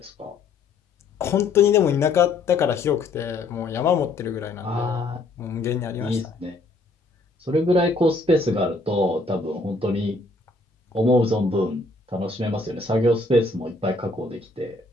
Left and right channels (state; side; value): quieter; right; 3.4 dB